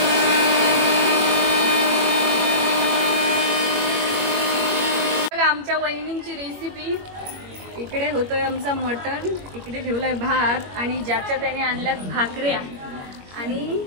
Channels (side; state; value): left; late; 21 ms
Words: आमच्या वहिनींची रेसिपी. इकडे होतोय आमचा मटण, इकडे ठेवलाय भात आणि ज्याच्या त्याने आणल्यात भाकऱ्या आणि